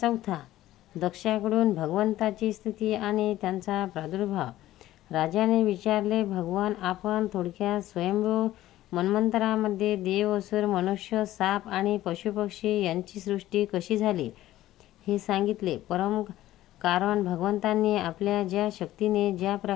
दक्षाकडून भगवंताची स्तुती आणि त्यांचा प्रादुर्भाव। राजाने विचारले, भगवान, आपण थोडक्यात स्वयंभू मन्वंतरामध्ये देव, असुर, मनुष्य, साप आणि पशुपक्षी यांची सृष्टी कशी झाली हे सांगितले। परम कारण भगवंतांनी आपल्या ज्या शक्तीने ज्या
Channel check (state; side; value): quieter; right; 14.7 dB